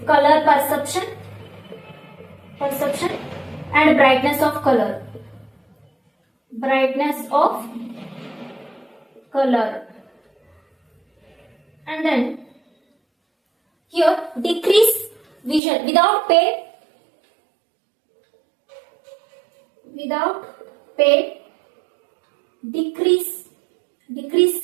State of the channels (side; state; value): left; drops out; at 15.6 s